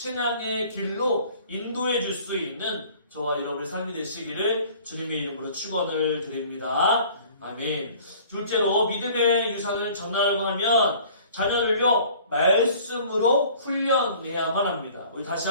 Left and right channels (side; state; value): both; inverted; correlation -0.50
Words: 길로 인도해 줄 수 있는 저와 여러분의 삶이 되시기를 주님의 이름으로 축원을 드립니다. 아멘. 둘째로 믿음의 유산을 전하려고 하면 자녀를요 말씀으로 훈련해야만 합니다. 우리 다시